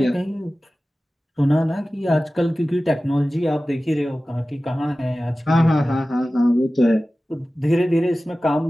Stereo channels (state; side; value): normal; both; correlation 0.96